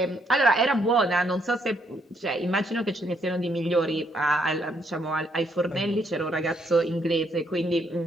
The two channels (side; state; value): both; normal; correlation 0.72